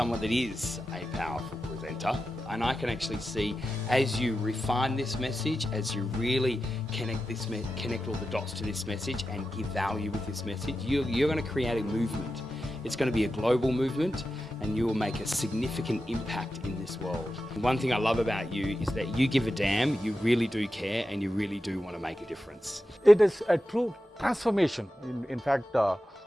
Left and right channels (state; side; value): normal; both; correlation 0.91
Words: that is a powerful presenter. And I can actually see, as you refine this message, as you really connect all the dots to this message and give value with this message, you're going to create a movement. It's going to be a global movement, and you will make a significant impact in this world. One thing I love about you is that you give a damn, you really do care, and you really do want to make a difference. It is a true transformation. In fact,